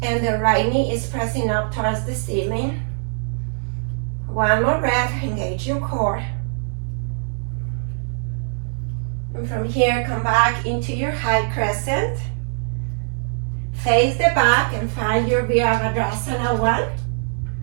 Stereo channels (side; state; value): left; silent; digital silence